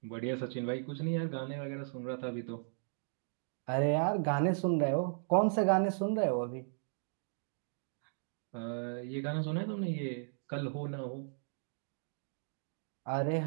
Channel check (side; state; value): left; silent; digital silence